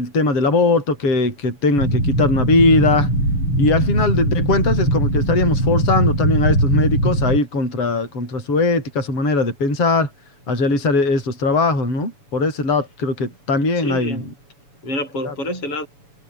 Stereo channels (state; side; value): late; right; 7.0 ms